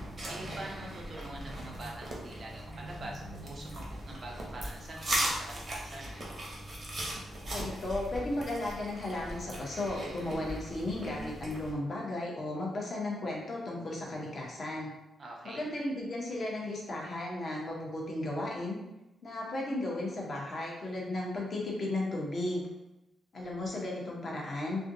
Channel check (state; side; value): normal; both; correlation 0.82